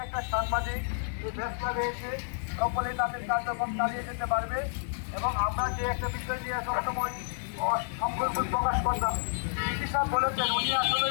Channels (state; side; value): silent; right; digital silence